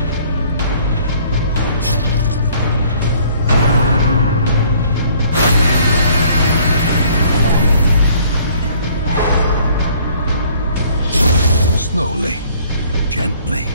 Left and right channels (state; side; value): inverted; both; correlation -0.58